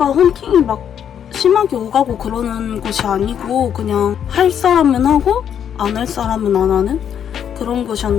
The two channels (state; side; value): quieter; right; 8.8 dB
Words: 헌팅이 막 심하게 오가고 그러는 곳이 아니고 그냥 할 사람은 하고 안 할 사람은 안 하는 그런